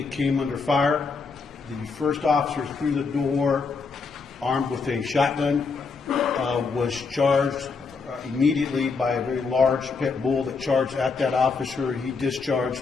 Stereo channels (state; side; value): quieter; right; 4.8 dB